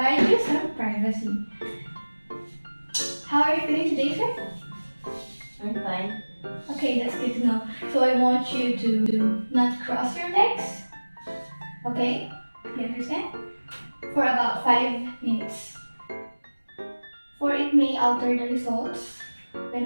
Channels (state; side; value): inverted; both; correlation -1.00